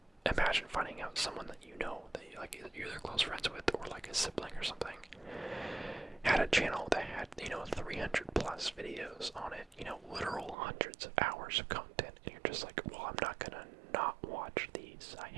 imagine finding out someone that that you're either close friends with, or a sibling or something, had a channel that had 300 plus videos on it, literal hundreds of hours of content, and you're just like, well, I'm not gonna not watch these. I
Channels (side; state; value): left; drops out; at 10.6 s